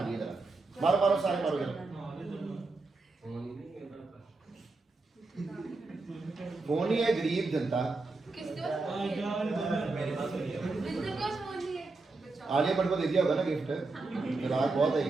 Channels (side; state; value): left; quieter; 3.5 dB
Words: जरा, मारो सारे मारो जरा। फोन ही है गरीब जनता, किसके पास फोन है? बिंदु के पास फोन नहीं है। आलिया भट्ट को दे दिया होगा ना गिफ्ट, ग्राहक बहुत है,